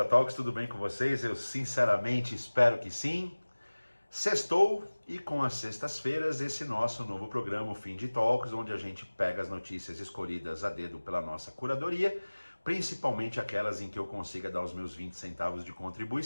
tudo bem com vocês? Eu sinceramente espero que sim. Sextou e com as sextas-feiras esse nosso novo programa, o Fim de Talks, onde a gente pega as notícias escolhidas a dedo pela nossa curadoria, principalmente aquelas em que eu consiga dar os meus 20 centavos de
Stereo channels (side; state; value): both; inverted; correlation -1.00